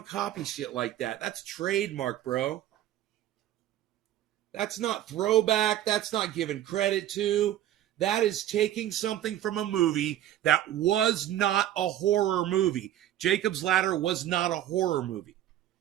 copy shit like that. That's trademark, bro. That's not throwback. That's not given credit to. That is taking something from a movie that was not a horror movie. Jacob's Ladder was not a horror movie.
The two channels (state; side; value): quieter; left; 12.5 dB